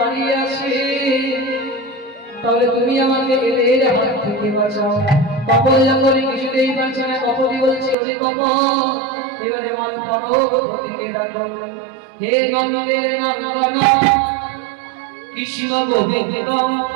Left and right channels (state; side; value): drops out; left; at 8.0 s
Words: আছে তাহলে তুমি আমাকে এদের হাত থেকে বাঁচাও কপল যখন কিছুতেই পারছে না কপতি বলছে ওরে কপ এবারে আমার পরবর্তীকে ডাকো হে নন্দের নন্দন কৃষ্ণ গোবিন্দ